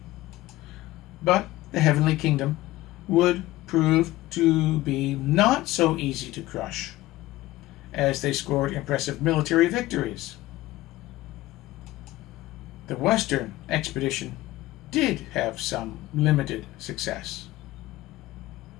But the Heavenly Kingdom would prove to be not so easy to crush, as they scored impressive military victories. The Western expedition did have some limited success.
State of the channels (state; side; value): quieter; right; 17.2 dB